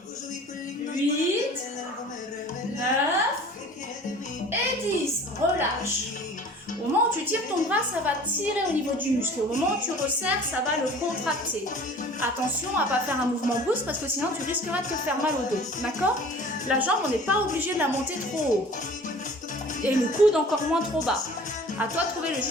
8, 9 et 10. Relâche. Au moment où tu tires ton bras, ça va tirer au niveau du muscle. Au moment où tu resserres, ça va le contracter. Attention à ne pas faire un mouvement brusque parce que sinon tu risqueras de te faire mal au dos. D'accord? La jambe, on n'est pas obligé de la monter trop haut. Et le coude encore moins trop bas. À toi de trouver le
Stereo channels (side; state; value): both; normal; correlation 0.45